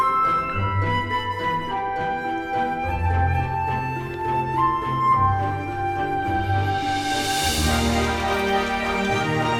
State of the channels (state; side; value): identical; both; correlation 1.00